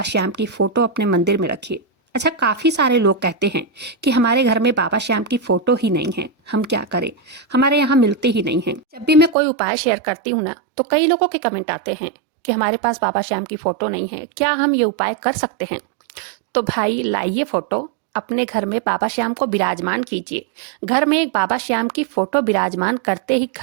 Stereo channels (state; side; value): drops out; left; at 9.3 s